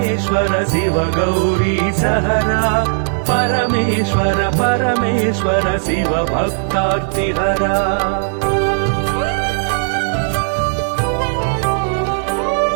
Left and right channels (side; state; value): left; silent; digital silence